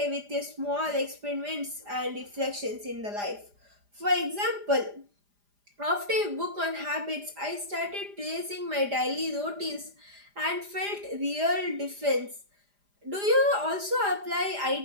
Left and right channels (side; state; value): left; late; 4.9 ms